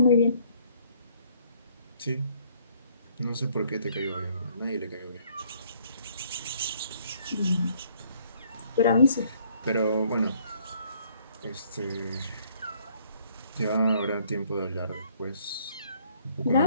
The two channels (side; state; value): both; inverted; correlation -0.63